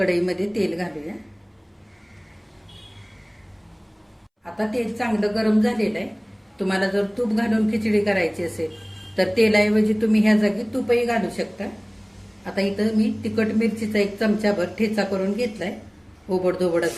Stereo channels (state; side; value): identical; both; correlation 1.00